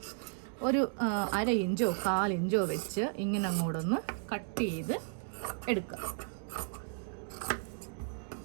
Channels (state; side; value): silent; left; 55 dB below the other